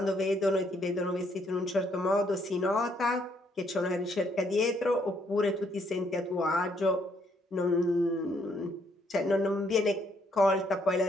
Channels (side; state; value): both; normal; correlation 0.70